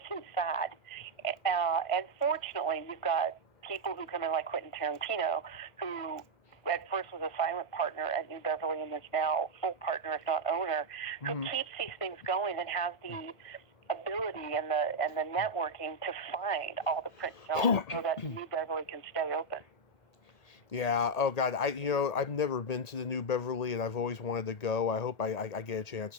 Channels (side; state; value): right; late; 1.8 ms